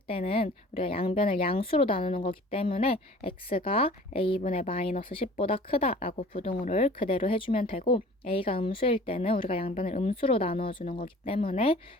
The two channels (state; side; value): normal; both; correlation 0.46